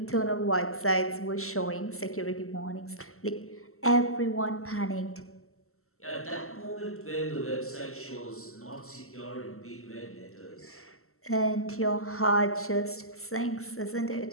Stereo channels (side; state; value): right; late; 0.63 ms